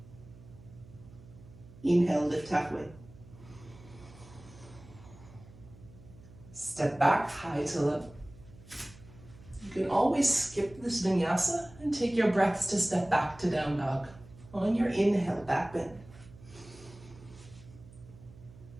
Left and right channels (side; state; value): right; noise; hum, 20 dB below the sound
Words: Inhale, lift halfway. Step back, high to low. You can always skip this vinyasa and take your breaths to step back to down dog. On your inhale, back bend.